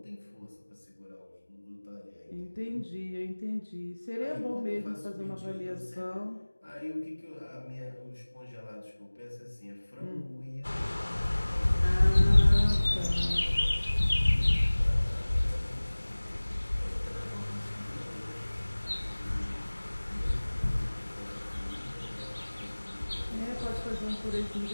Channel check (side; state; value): both; inverted; correlation -1.00